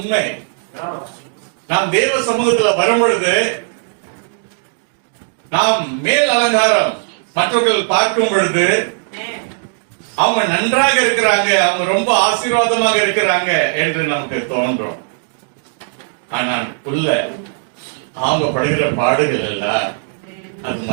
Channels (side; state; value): left; silent; digital silence